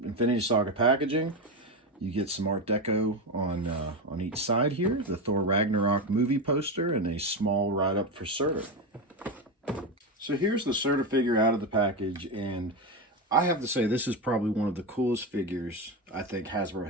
Infinity Saga packaging. You get some Art Deco on each side here, the Thor Ragnarok movie poster, and a small write-up for Surtur. So here's the Surtur figure out of the package, and I have to say this is probably one of the coolest figures I think Hasbro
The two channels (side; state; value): both; normal; correlation 0.15